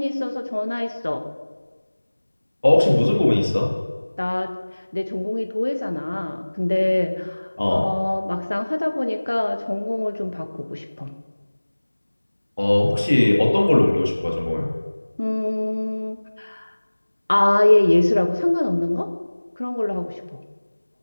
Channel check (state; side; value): inverted; both; correlation -1.00